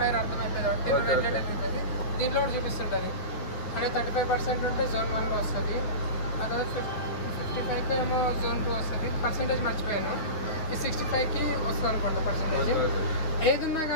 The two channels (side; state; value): right; late; 9.4 ms